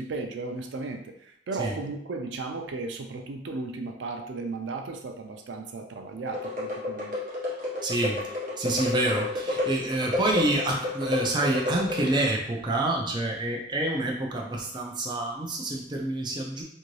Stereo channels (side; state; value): both; normal; correlation 0.41